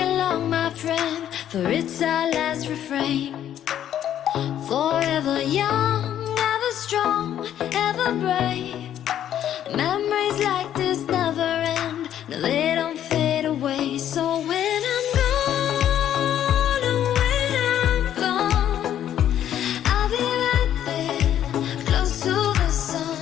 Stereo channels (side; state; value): right; quieter; 10.7 dB